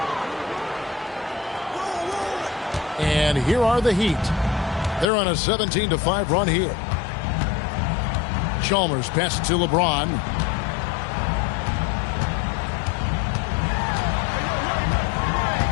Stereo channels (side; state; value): right; drops out; at 5.1 s